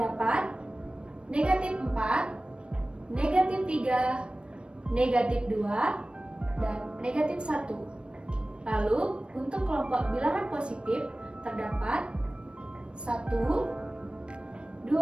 negatif 4, negatif 3, negatif 2, dan negatif 1. Lalu, untuk kelompok bilangan positif terdapat 1,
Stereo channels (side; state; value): left; late; 0.057 ms